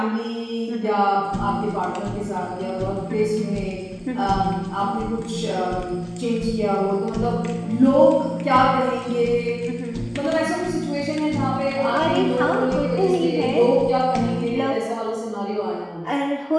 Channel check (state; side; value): identical; both; correlation 1.00